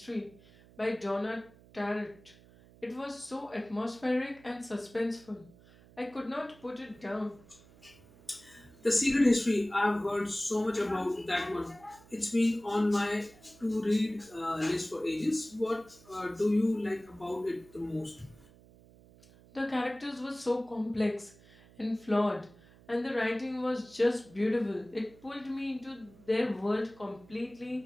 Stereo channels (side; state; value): right; noise; hum, 24 dB below the sound